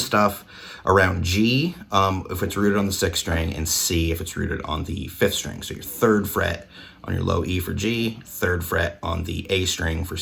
stuff around G if it's rooted on the 6th string, and C if it's rooted on the 5th string. So your 3rd fret on your low E for G, 3rd fret on the A string for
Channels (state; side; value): identical; both; correlation 1.00